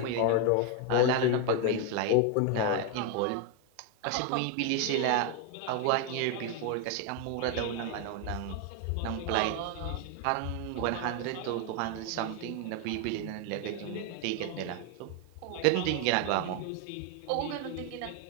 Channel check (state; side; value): different; both; correlation 0.01